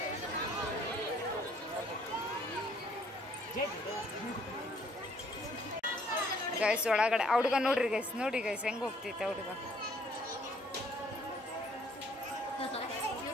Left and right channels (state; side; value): normal; both; correlation 0.62